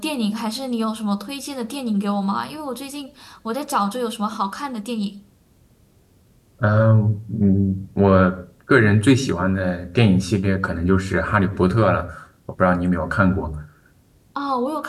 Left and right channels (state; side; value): identical; both; correlation 1.00